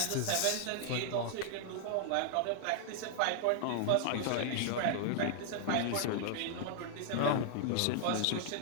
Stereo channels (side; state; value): both; different; correlation -0.01